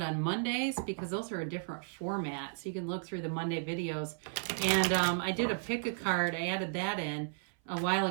on Mondays because those are a different format. So you can look through the Monday videos. And I did a pick a card. I added that in a while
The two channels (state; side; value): silent; left; 55 dB below the other